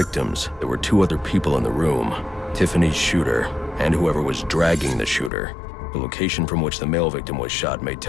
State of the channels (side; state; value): right; drops out; at 5.3 s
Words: there were two other people in the room. Tiffany's shooter, and whoever was dragging the shooter. The location from which the male victim was shot may